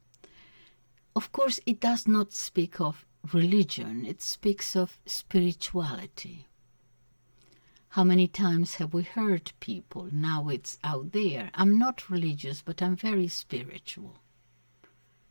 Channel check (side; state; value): both; inverted; correlation -1.00